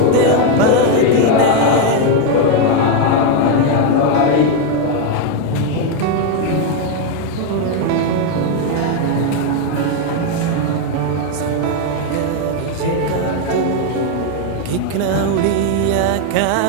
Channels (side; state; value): both; different; correlation 0.01